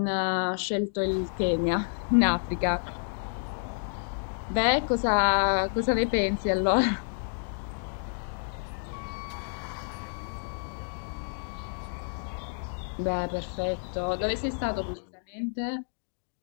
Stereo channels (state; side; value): silent; right; digital silence